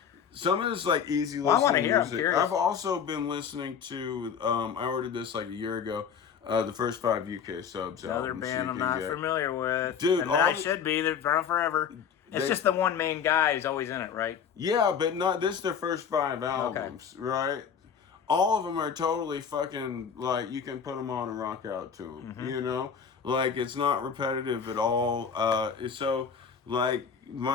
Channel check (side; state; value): right; quieter; 7.2 dB